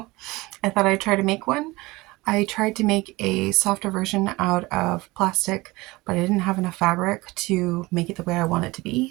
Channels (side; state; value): left; quieter; 21.5 dB